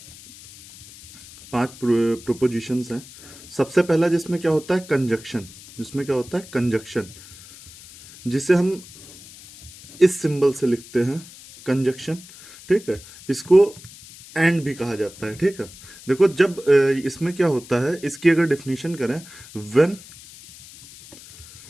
प्रोपोजिशंस हैं। सबसे पहला जिसमें क्या होता है, कंजक्शन। जिसमें क्या होता है, कंजक्शन, जिसे हम इस सिंबल से लिखते हैं, कंजक्शन। ठीक है, इसको एंड भी कहा जाता है। ठीक है, देखो जब इसमें क्या होता है, इसकी अगर डेफिनेशन करें, when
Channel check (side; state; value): left; noise; hiss, 19 dB below the sound